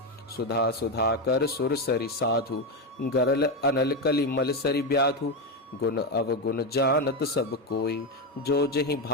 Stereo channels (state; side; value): normal; both; correlation 0.10